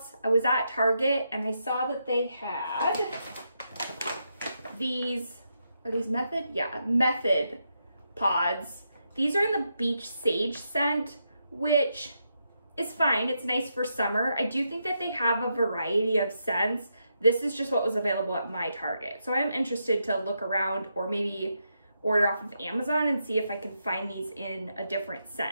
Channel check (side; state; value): both; inverted; correlation -0.82